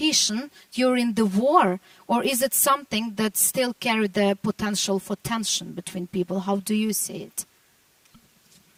during the war, or is it something that still carries the potential for tension between people? How do you see it?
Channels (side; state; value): both; identical; correlation 1.00